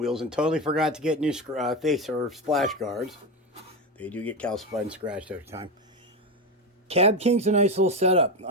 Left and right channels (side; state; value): both; normal; correlation 0.15